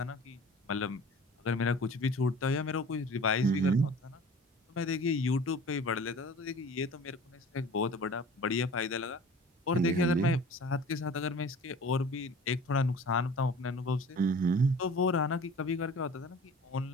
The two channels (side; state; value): both; normal; correlation 0.43